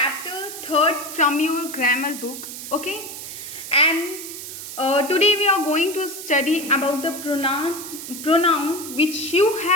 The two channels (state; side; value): noise; right; hiss, 10 dB below the sound